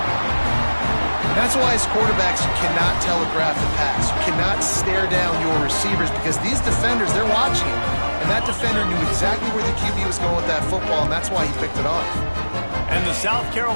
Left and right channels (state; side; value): inverted; both; correlation -1.00